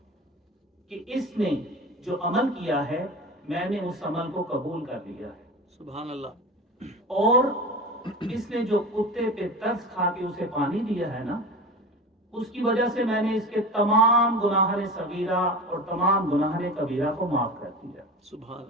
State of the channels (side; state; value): both; normal; correlation 0.30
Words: کہ اس نے جو عمل کیا ہے میں نے اس عمل کو قبول کر لیا ہے. سبحان اللہ. اور اس نے جو کتے پہ ترس کھا کے اسے پانی دیا ہے نا، اس کی وجہ سے میں نے اس کے تمام گناہان صغیرہ اور تمام گناہان کبیرہ کو معاف کر دیا. سبحان